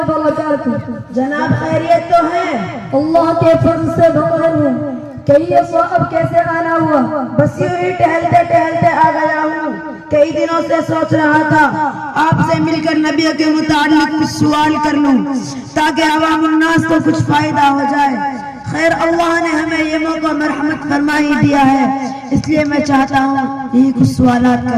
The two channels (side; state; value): both; identical; correlation 1.00